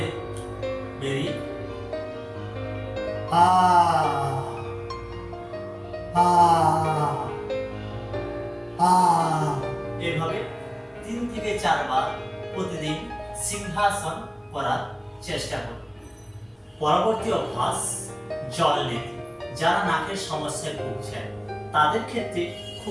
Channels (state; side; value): identical; both; correlation 1.00